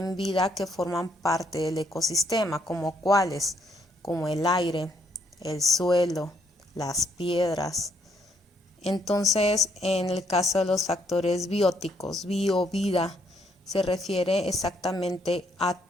vida, que forman parte del ecosistema, como cuáles, como el aire, el suelo, las piedras. Entonces, en el caso de los factores bióticos, vida, se refiere exactamente a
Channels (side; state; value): both; normal; correlation 0.70